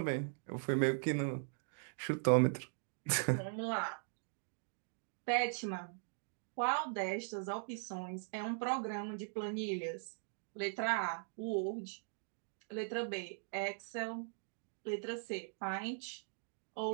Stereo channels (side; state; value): left; silent; digital silence